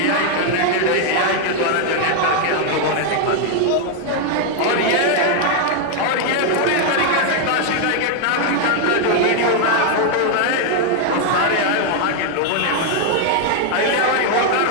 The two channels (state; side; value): different; both; correlation 0.00